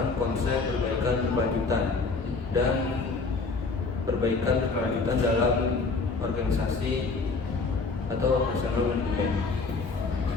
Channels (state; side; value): quieter; right; 4.1 dB